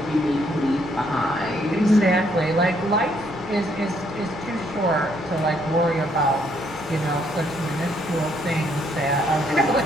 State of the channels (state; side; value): noise; right; hum, 20 dB below the sound